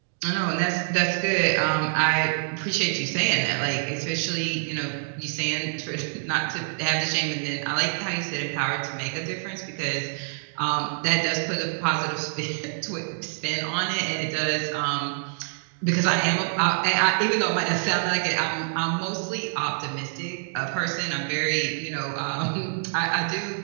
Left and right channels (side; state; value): left; silent; digital silence